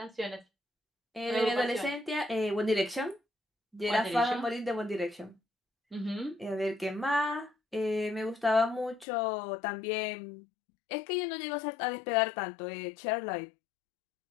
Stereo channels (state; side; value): drops out; right; at 9.1 s